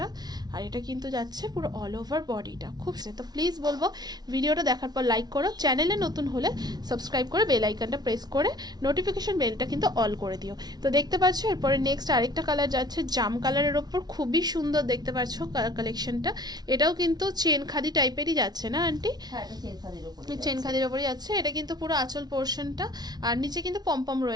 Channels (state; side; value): late; left; 0.19 ms